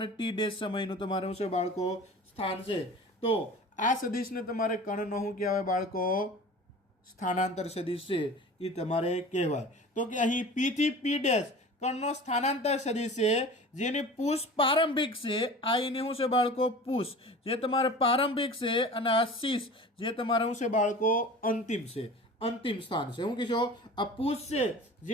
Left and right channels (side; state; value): both; normal; correlation 0.39